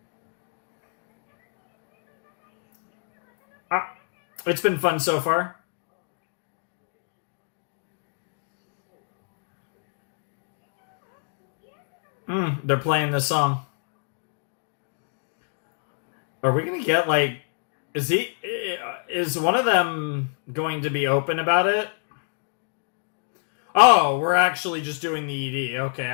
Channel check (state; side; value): silent; right; digital silence